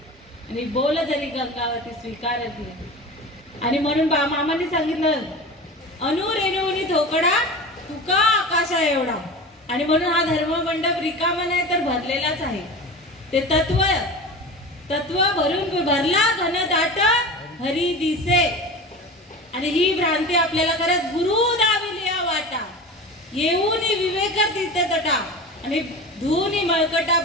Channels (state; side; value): normal; both; correlation 0.31